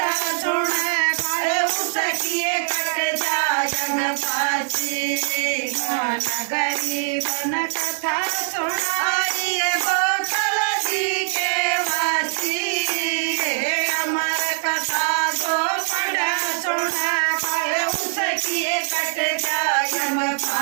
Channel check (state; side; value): silent; left; digital silence